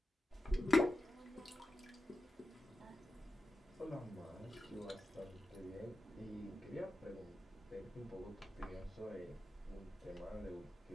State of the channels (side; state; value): both; normal; correlation 0.92